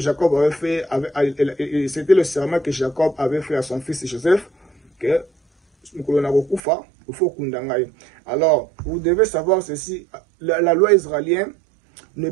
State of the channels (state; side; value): drops out; left; at 6.6 s